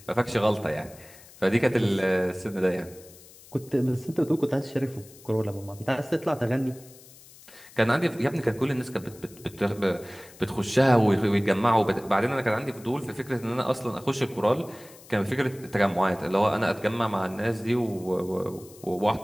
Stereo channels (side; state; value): left; noise; hiss, 22 dB below the sound